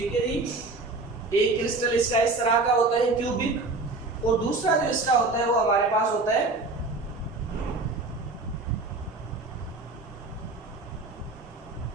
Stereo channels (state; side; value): quieter; left; 3.4 dB